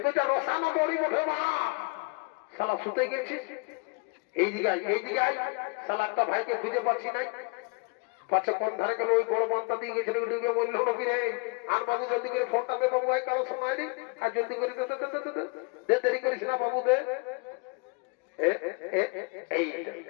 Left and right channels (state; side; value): quieter; right; 31.8 dB